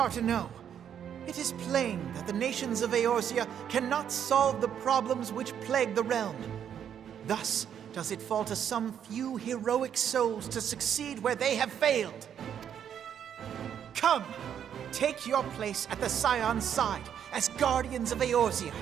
it is plain that the nations of Eorzea cannot solve the problems which plague the realm. Thus does it fall to some few heroic souls to succeed where they have failed. Come! Take your place at the Scion's side as guardians of Eorzea,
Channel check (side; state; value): left; quieter; 8.9 dB